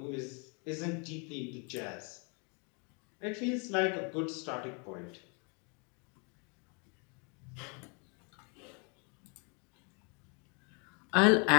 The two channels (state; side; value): quieter; right; 34.5 dB